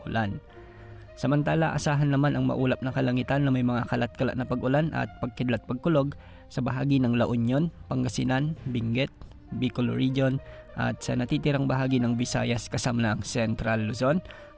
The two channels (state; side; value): identical; both; correlation 1.00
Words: ulan. Samantala, asahan naman ang maulap na kalangitan na may mga kalat-kalat na pag-ulan at pagkidlat-pagkulog sa bahagi ng La Union, Pangasinan, Benguet, Bicol Region at sa natitirang bahagi ng Visayas kasama ng Central Luzon,